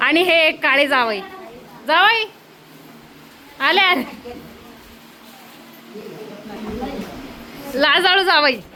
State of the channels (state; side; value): identical; both; correlation 1.00